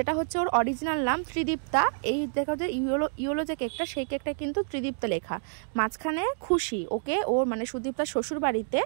হচ্ছে ওর অরিজিনাল নাম ত্রিদীপ্তা, এই দেখা যে ইয়েলো যে কেকটা, সেই কেকটা কিন্তু ত্রিদীপ্তা লেখা। মাঝখানে খুশি, ওকে ওর মানে সুদীপ্তার শ্বশুর বাড়িতে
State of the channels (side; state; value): left; silent; digital silence